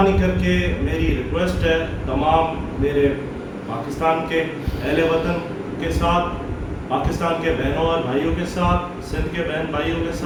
करके मेरी रिक्वेस्ट है तमाम मेरे पाकिस्तान के अहले वतन के साथ, पाकिस्तान के बहनों और भाइयों के साथ, सिंध के बहन भाइयों के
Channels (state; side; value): identical; both; correlation 1.00